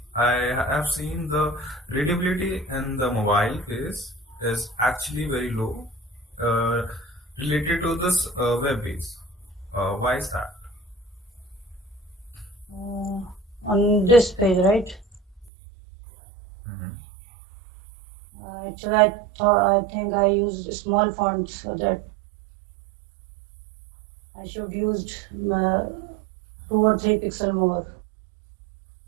I have seen the readability in the mobile case is actually very low related to this web base. Why is that? On this page, right? Actually, I think I used small fonts, so that I should used 2 or 3 pixel more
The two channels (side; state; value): left; drops out; at 15.5 s